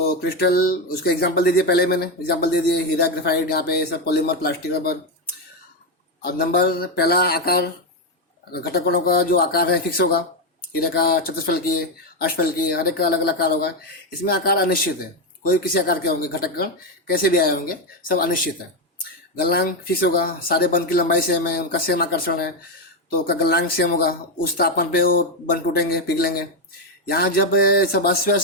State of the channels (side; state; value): both; normal; correlation 0.07